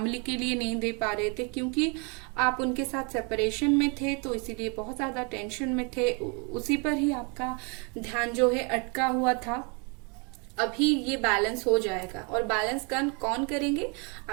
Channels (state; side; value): quieter; left; 33.9 dB